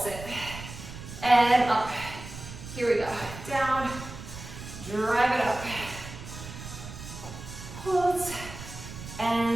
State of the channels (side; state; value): right; noise; rumble, 12 dB below the sound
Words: it. And up. Here we go. Down. Drive it up. Pulse.